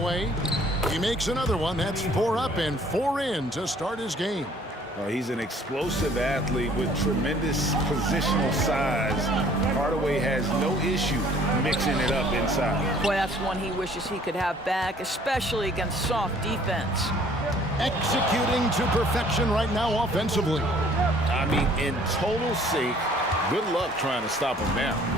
He makes another one. That's 4 up and 4 in to start his game. Well, he's an explosive athlete with tremendous positional size. Hardaway has no issue mixing it up inside. Boy, that's one he wishes he could have back, especially against soft defense. Executing to perfection right now offensively. I mean, in total sync. Good luck trying to stop him now.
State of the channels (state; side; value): normal; both; correlation 0.57